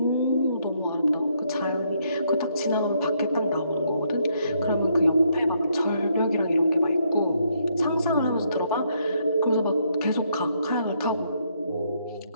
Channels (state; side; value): inverted; both; correlation -0.73